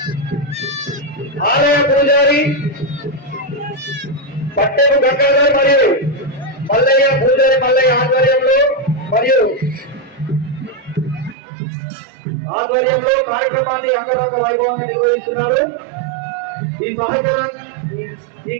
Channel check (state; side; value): drops out; left; at 11.4 s